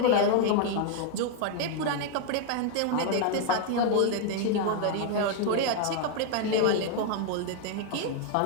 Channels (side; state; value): both; different; correlation 0.00